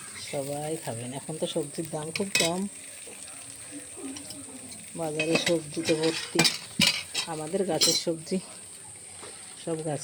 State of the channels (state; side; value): identical; both; correlation 1.00